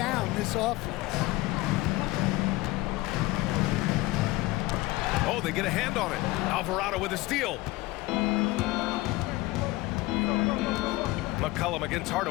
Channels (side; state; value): right; quieter; 19.8 dB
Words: this offense. Oh, they get a hand on it. Alvarado with a steal. McCollum against